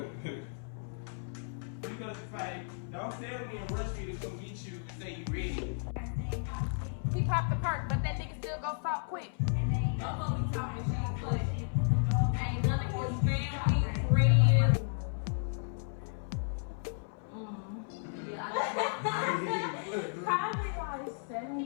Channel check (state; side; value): silent; right; 55 dB below the other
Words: Because it's like, don't tell me and rush me to come get you and say you ready. He popped the perk, but that nigga still go stop quick. Oh, we talking shit, but ain't nothing for family, friends. Probably like